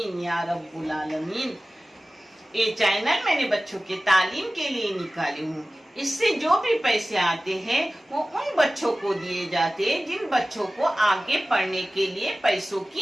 या रब्बुल आलमीन। ये चैनल मैंने बच्चों के तालीम के लिए निकाली हूँ। इससे जो भी पैसे आते हैं वो उन बच्चों को दिए जाते हैं जिन बच्चों को आगे पढ़ने के लिए पैसों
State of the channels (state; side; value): normal; both; correlation 0.97